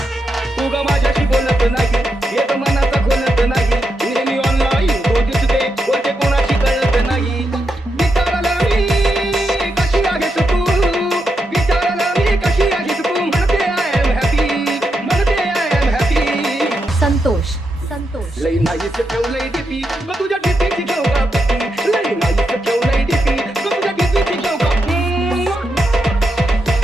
तू ग माझ्याशी बोलत नाही, एक मनाचा खोलत नाही, नेहमी ऑनलाईन तो दिसते बोलते कोणाशी कळत नाही. विचारला मी कशी आहेस तू, विचारला मी कशी आहेस तू, म्हणते आय एम हॅपी, म्हणते I am happy. Santosh Santosh लई नाहीच ठेवलंय डीपी ग तुझ्या डीपीची घेऊ का पती, लई नाहीच ठेवलंय डीपी ग तुझ्या डीपीची घेऊ का.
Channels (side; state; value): both; normal; correlation 0.84